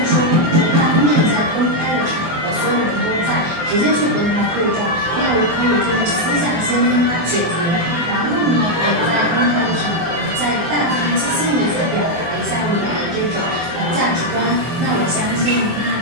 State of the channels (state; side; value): late; left; 24 ms